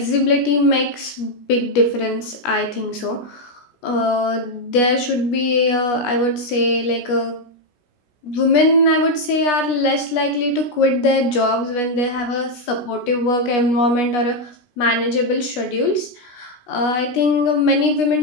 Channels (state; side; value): late; right; 16 ms